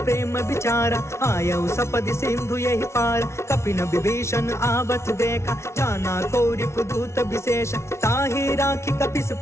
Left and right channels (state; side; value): late; right; 0.13 ms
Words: विचारा आयऊ सपद सिंधु यही पार। कपिन विभीषण आवत देखा जाना कौरि पुदूत विशेष। ताहि राखी कपिस